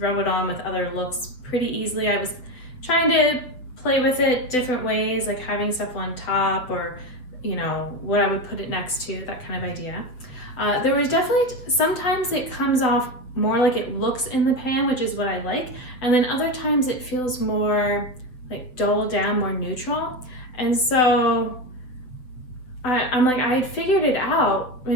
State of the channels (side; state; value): right; late; 7.6 ms